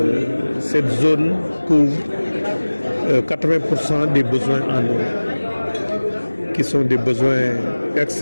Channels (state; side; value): inverted; both; correlation -1.00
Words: zone couvre 80% des besoins en eau, qui sont des besoins